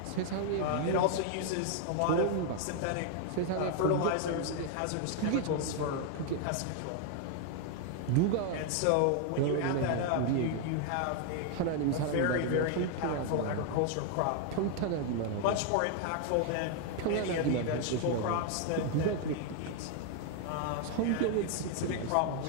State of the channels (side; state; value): both; different; correlation 0.00